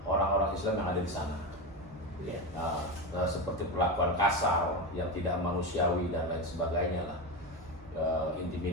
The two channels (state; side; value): normal; both; correlation 0.18